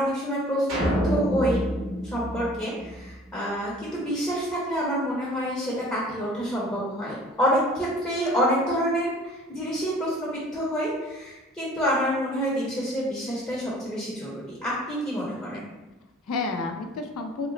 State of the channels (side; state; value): both; normal; correlation 0.50